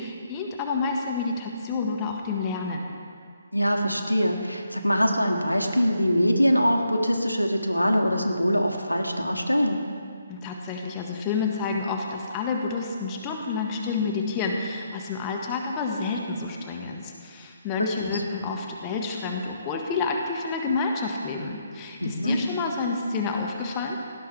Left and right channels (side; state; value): both; inverted; correlation -0.76